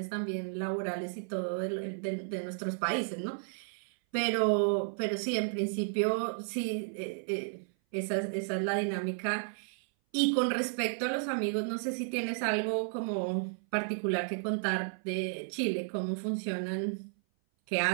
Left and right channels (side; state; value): left; silent; 56 dB below the other